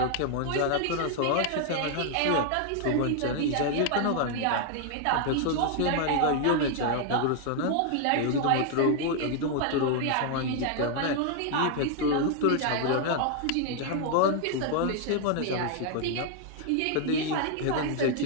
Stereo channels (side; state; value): both; different; correlation 0.00